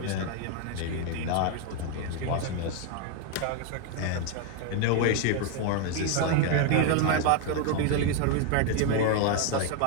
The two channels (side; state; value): both; different; correlation 0.01